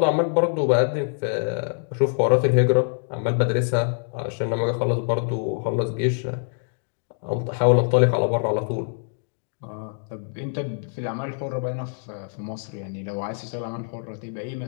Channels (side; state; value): right; silent; digital silence